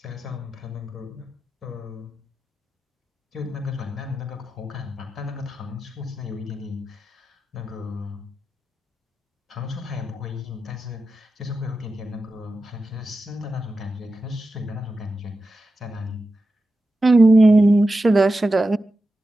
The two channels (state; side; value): normal; both; correlation 0.91